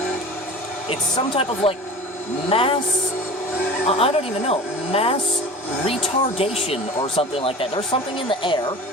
It's some type of like mass, I don't even know, mass retardation or something like that. There's something in the air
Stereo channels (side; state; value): both; normal; correlation 0.37